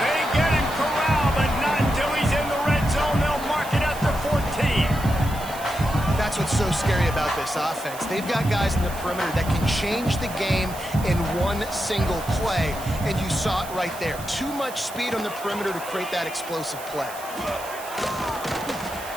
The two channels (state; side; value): noise; right; hiss, 14 dB below the sound